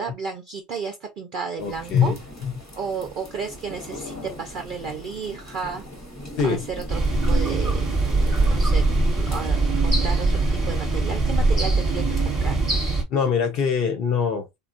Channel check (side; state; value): both; normal; correlation 0.69